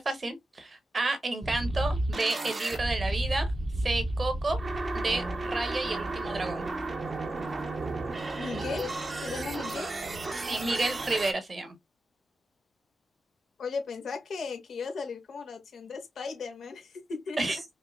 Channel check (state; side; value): normal; both; correlation 0.91